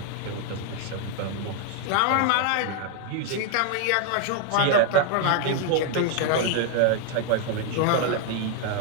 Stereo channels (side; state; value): both; different; correlation 0.00